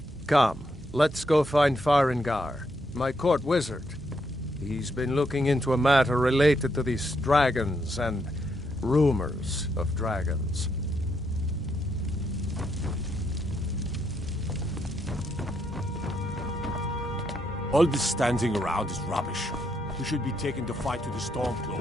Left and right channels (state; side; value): noise; right; hum, 18 dB below the sound